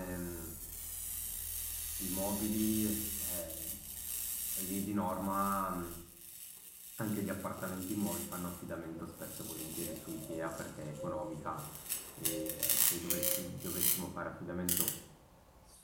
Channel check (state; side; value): identical; both; correlation 1.00